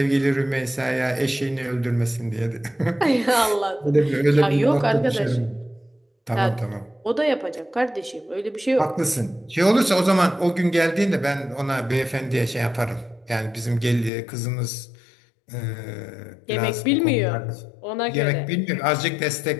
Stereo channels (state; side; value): drops out; right; at 14.1 s